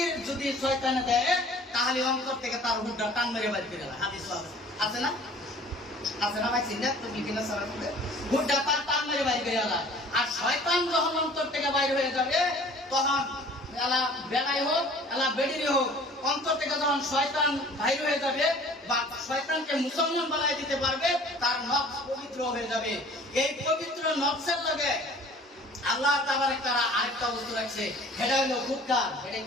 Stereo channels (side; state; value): both; normal; correlation 0.49